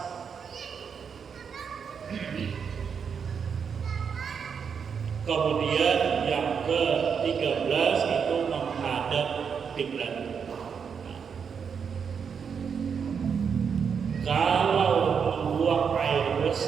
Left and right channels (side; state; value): left; quieter; 6.6 dB